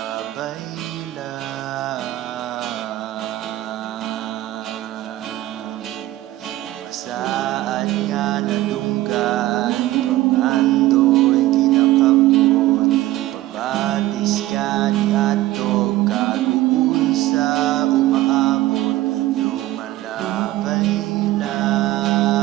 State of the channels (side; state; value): left; quieter; 16.2 dB